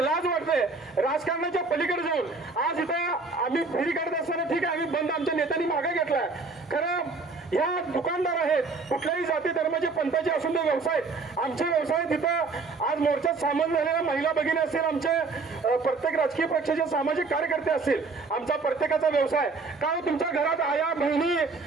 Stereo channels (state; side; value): quieter; left; 4.0 dB